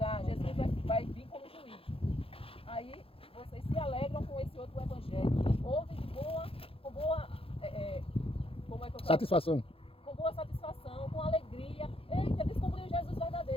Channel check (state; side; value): late; right; 0.27 ms